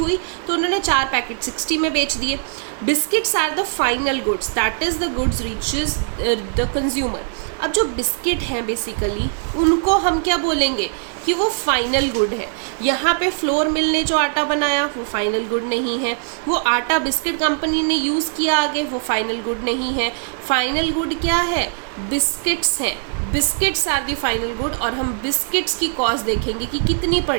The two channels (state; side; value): silent; left; digital silence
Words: तो उन्होंने 4 पैकेट 60 में बेच दिए। Biscuits are the final goods, that is the goods reaches the consumer. अब जो बिस्किट हैं बेसिकली उनको हम क्या बोलेंगे कि वो फाइनल गुड है। यहाँ पे फ्लोर मिल ने जो आटा बनाया वो फाइनल गुड नहीं है, वो आटा बिस्किट कंपनी ने यूज़ किया आगे वो फाइनल गुड नहीं है। फाइनल गुड क्या है? बिस्किट्स हैं। Biscuits are the final good, और हम बिस्किट्स की कॉस्ट देखेंगे कि कितनी